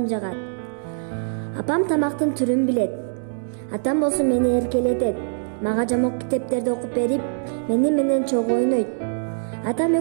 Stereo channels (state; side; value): silent; left; digital silence